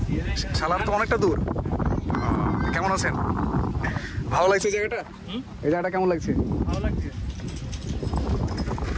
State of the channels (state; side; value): identical; both; correlation 1.00